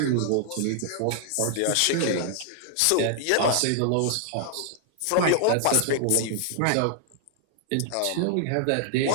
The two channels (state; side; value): different; both; correlation 0.00